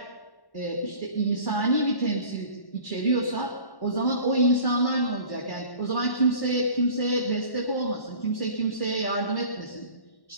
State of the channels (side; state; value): right; late; 1.1 ms